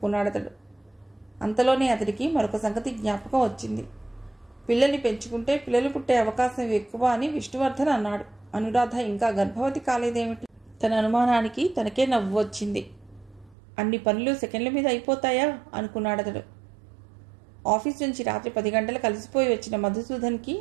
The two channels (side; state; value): left; drops out; at 13.6 s